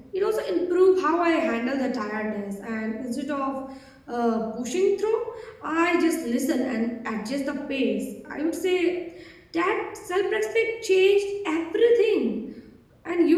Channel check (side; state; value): both; identical; correlation 1.00